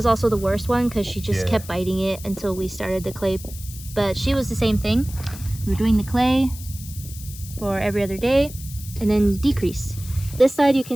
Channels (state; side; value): noise; left; hiss, 15 dB below the sound